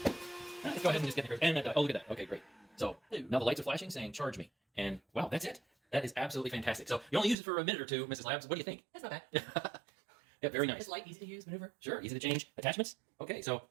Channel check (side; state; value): left; drops out; at 7.4 s